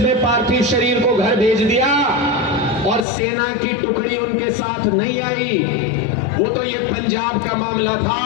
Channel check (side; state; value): right; drops out; at 3.1 s